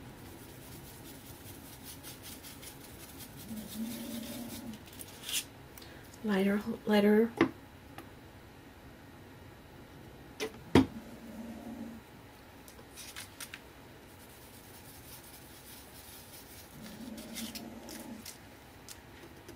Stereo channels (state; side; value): identical; both; correlation 1.00